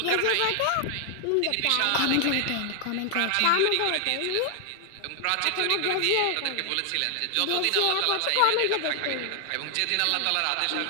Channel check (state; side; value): different; both; correlation 0.00